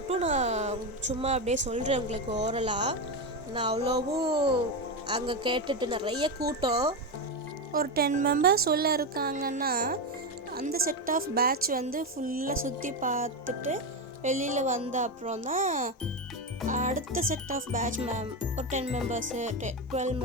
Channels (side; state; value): both; normal; correlation 0.12